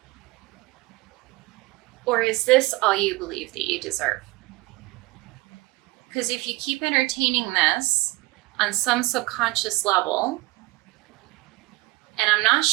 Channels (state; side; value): quieter; left; 21.7 dB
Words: Or is this all you believe that you deserve? Because if you keep entertaining this on some subconscious level, and I'm not